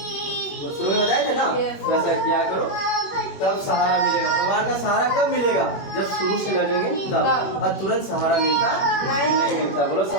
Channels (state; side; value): late; right; 21 ms